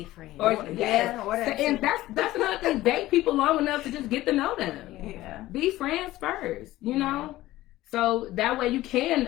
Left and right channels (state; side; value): quieter; right; 16.3 dB